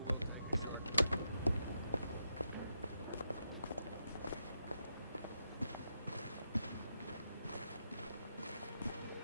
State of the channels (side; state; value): both; inverted; correlation -0.83